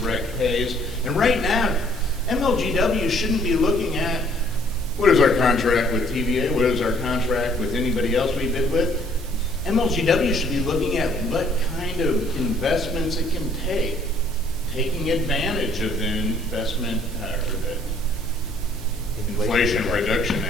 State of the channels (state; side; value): noise; right; hum, 16 dB below the sound